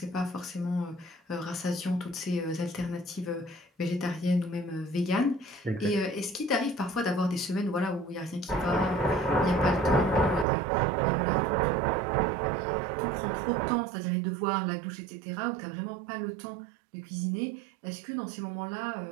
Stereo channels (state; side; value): drops out; left; at 10.5 s